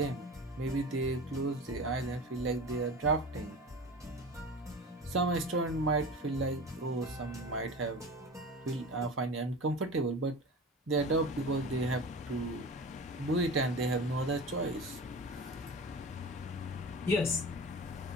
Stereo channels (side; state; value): both; normal; correlation 0.33